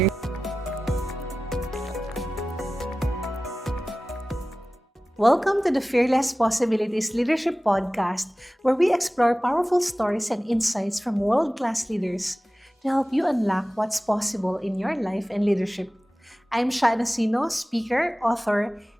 Welcome to the Fearless Possibilities Leadership Podcast, where we explore powerful stories and insights from world-class leaders to help you unlock what's possible in your life and leadership. I'm Nacino, speaker, author,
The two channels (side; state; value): both; normal; correlation 0.96